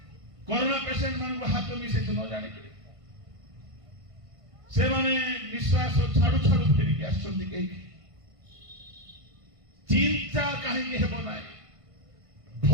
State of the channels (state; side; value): late; left; 1.5 ms